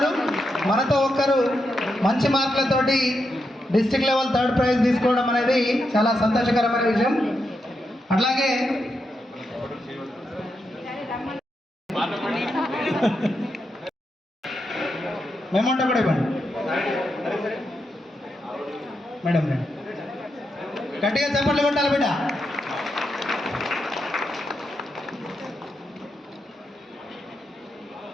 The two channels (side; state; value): both; normal; correlation 0.84